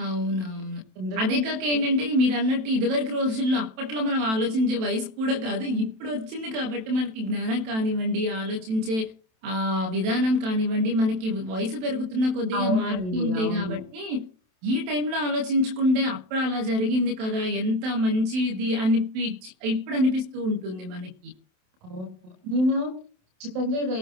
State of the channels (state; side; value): late; left; 27 ms